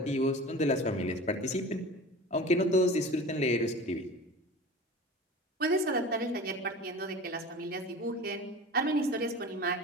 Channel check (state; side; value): normal; both; correlation 0.36